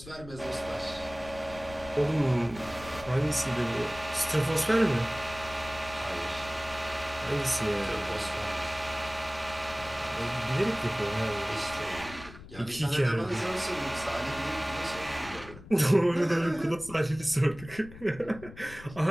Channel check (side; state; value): left; noise; rumble, 17 dB below the sound